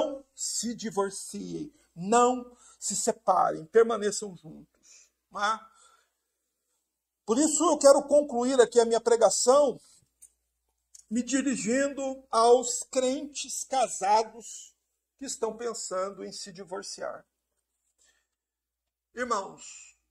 se divorciem, não se separem, permaneçam juntos. Por isso eu quero concluir aqui a minha pregação me dirigindo aos crentes casados que estão pensando em se divorciar. Irmãos,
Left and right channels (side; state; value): both; identical; correlation 1.00